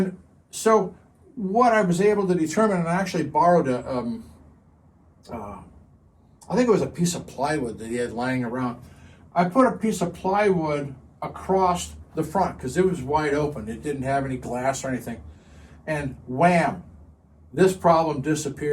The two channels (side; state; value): both; identical; correlation 1.00